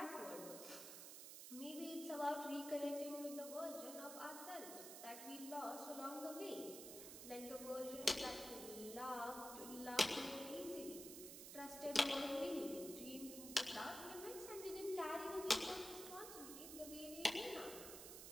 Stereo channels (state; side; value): noise; right; hiss, 9 dB below the sound